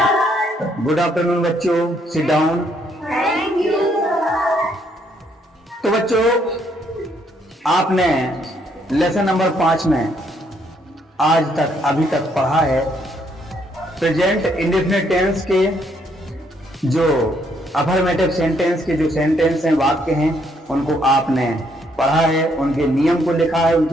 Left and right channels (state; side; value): normal; both; correlation 0.71